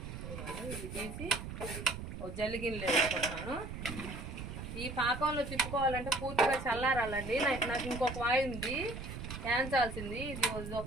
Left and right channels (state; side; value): noise; right; rumble, 8 dB below the sound